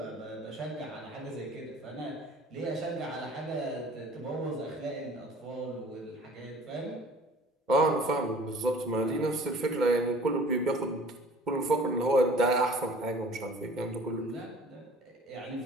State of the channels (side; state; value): both; normal; correlation 0.49